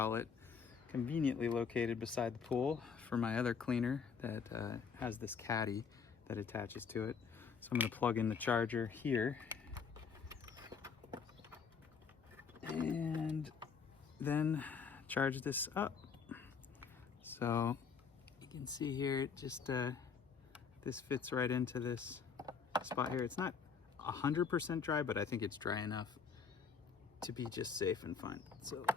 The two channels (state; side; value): quieter; right; 6.0 dB